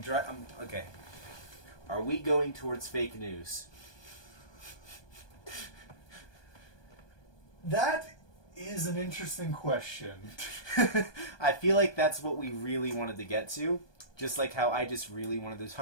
okay. Are we going towards fake news? That is an interesting question. I feel like that's what we really wanted to get to. Just like how I just really wanted to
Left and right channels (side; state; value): right; late; 1.2 ms